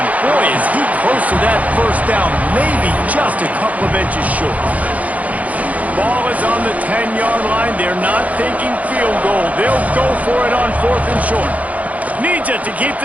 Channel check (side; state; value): left; late; 0.071 ms